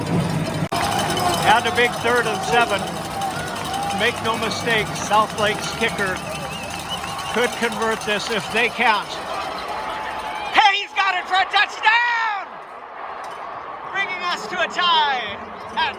And a big 3rd and 7. Make no mistake, Southlake's kicker could convert this if they can't. Hey, he's got it for a touchdown! Bringing us to a tie at,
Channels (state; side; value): identical; both; correlation 1.00